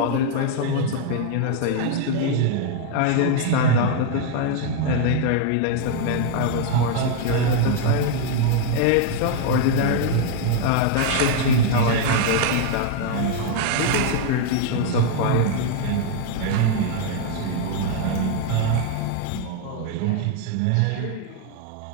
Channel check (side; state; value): both; different; correlation 0.00